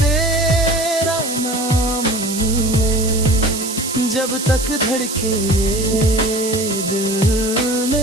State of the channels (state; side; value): noise; right; hiss, 6 dB below the sound